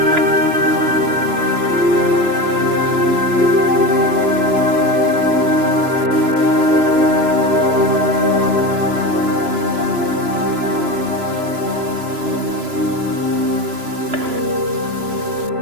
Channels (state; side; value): late; left; 3.0 ms